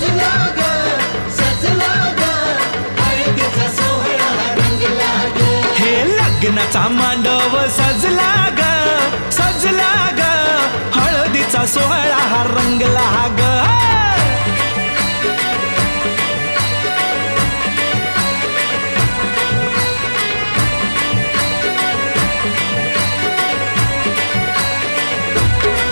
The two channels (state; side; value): inverted; both; correlation -1.00